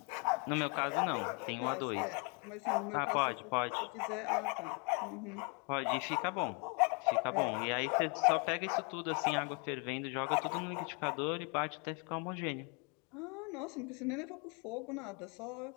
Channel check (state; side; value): quieter; right; 33.7 dB